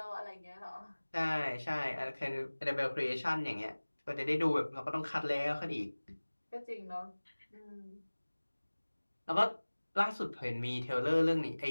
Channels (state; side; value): inverted; both; correlation -1.00